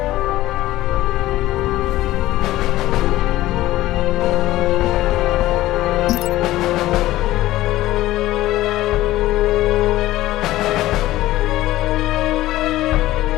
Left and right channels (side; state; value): right; quieter; 16.0 dB